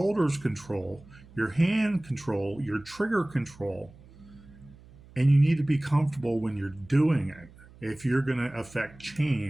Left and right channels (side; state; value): right; noise; hum, 23 dB below the sound